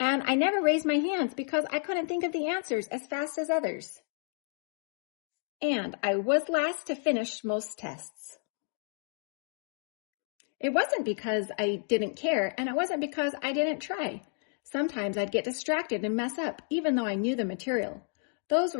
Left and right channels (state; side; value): silent; right; 57 dB below the other